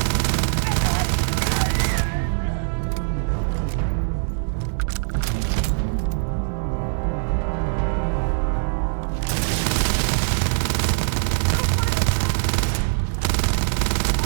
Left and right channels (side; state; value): left; silent; 64 dB below the other